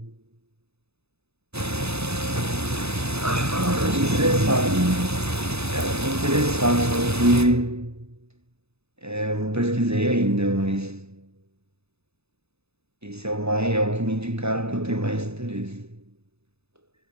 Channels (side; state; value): left; late; 0.79 ms